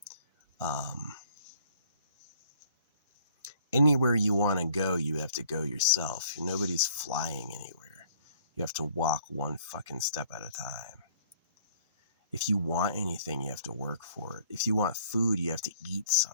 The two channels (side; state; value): both; inverted; correlation -0.58